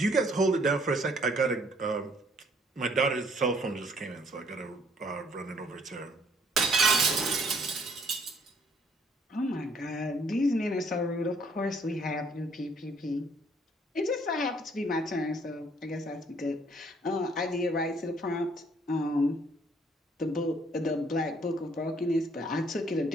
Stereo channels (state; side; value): normal; both; correlation 0.63